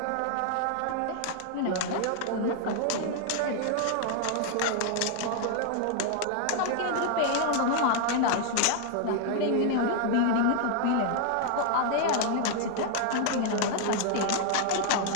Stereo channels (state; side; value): different; both; correlation 0.00